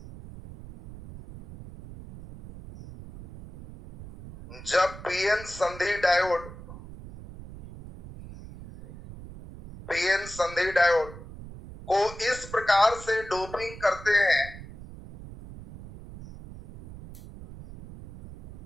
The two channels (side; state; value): right; noise; rumble, 15 dB below the sound